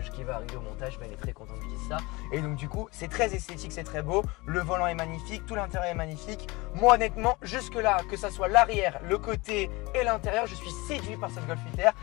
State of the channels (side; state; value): right; quieter; 23.7 dB